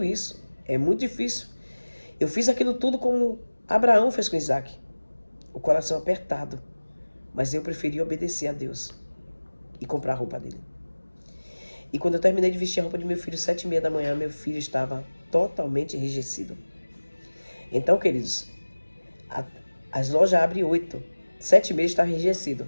isso, é muito difícil. Eu fiz aquilo tudo como Abraão fez com Isaac, o coração apertado, mas eu preferi obedecer a Deus e comprar a roupa dele. E quando eu terminei de vestir a roupa de meu filho, 7h30 da manhã, meu filho estava totalmente enrijecido. Então, queridos, as lojas abrem 8, 7h30 está enrijecido.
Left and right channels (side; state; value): both; inverted; correlation -1.00